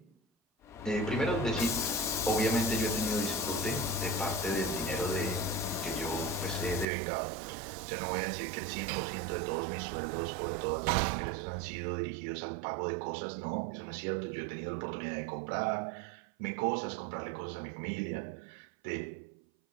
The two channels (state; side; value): drops out; left; at 6.9 s